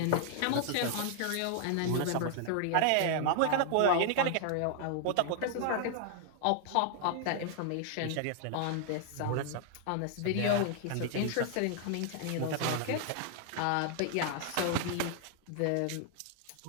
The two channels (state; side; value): different; both; correlation 0.00